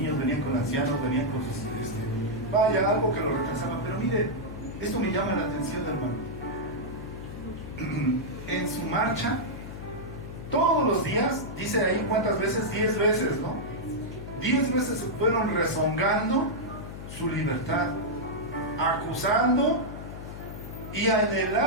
venían con ancianos, venían con sus... vaya, algo que lo retrasaba. Pero mire, esto me llama la atención, hermano. En su marcha, todos los días, dice ahí cuántas veces, 10 veces, ¿no? 10 veces se fueron rezongando su libertad, acusando y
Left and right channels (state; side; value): noise; left; hum, 10 dB below the sound